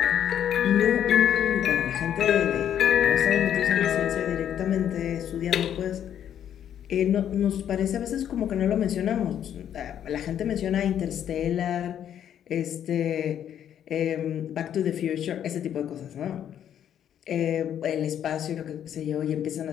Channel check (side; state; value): right; quieter; 9.8 dB